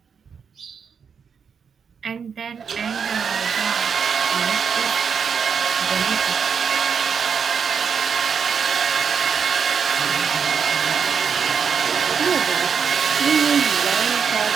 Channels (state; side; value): quieter; left; 6.6 dB